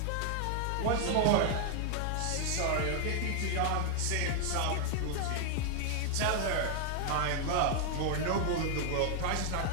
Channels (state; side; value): different; both; correlation 0.00